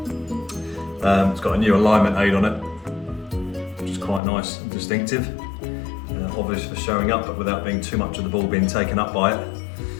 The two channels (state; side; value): drops out; right; at 4.2 s